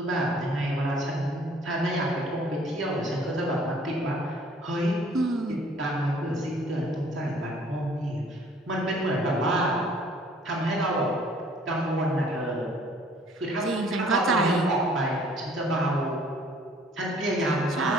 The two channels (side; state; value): both; normal; correlation 0.57